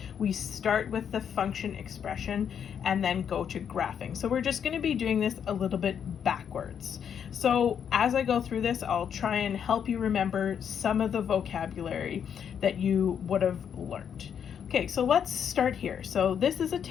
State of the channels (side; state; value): right; quieter; 8.1 dB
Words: we start with the function expression and then go to graphing. So we're just going to be doing this a little bit backwards. So as I go through this, I'll try and help you remember some of the vocabulary that you would have learned. Okay, so let's start here. So this is a